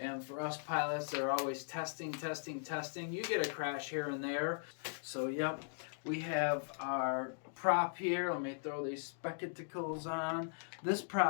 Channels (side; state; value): right; silent; digital silence